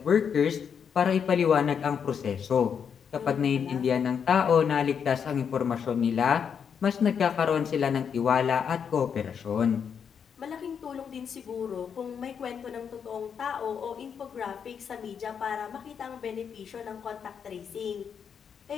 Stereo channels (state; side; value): quieter; right; 7.2 dB